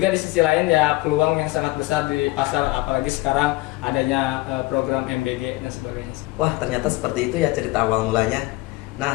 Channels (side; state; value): right; quieter; 20.6 dB